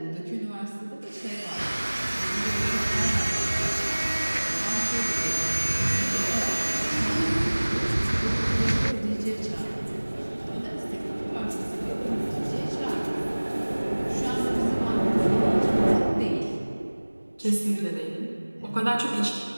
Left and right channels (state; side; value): inverted; both; correlation -1.00